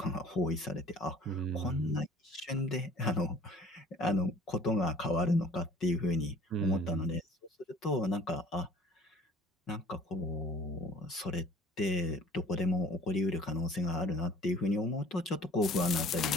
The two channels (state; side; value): normal; both; correlation 0.50